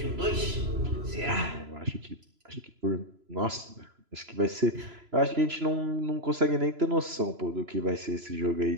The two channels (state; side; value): late; left; 3.0 ms